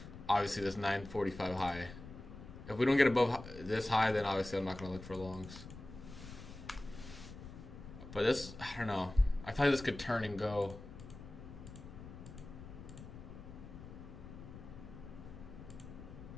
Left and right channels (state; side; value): noise; left; rumble, 13 dB below the sound